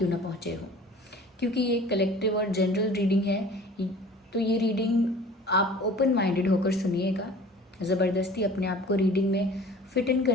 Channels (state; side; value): normal; both; correlation 0.45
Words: ना पहुँचे हो। क्योंकि ये कलेक्टिव और जनरल रीडिंग है, तो ये रीडिंग आप ओपन माइंडेड होकर सुनिएगा। ज़बरदस्ती अपने आप को रीडिंग में फिट इन